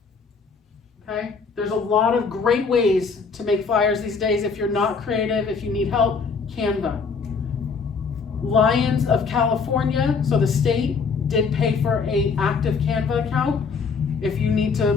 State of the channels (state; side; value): quieter; right; 5.2 dB